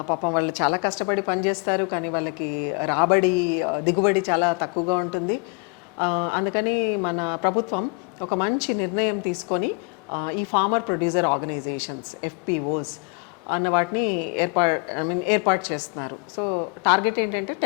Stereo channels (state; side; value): quieter; right; 34.0 dB